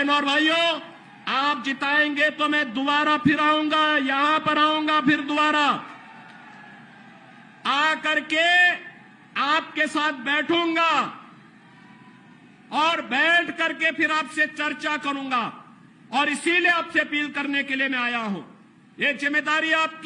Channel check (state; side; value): identical; both; correlation 1.00